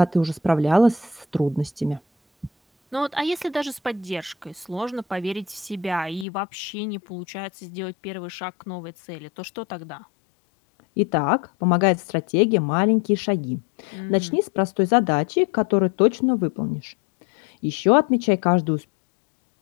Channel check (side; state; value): right; drops out; at 6.2 s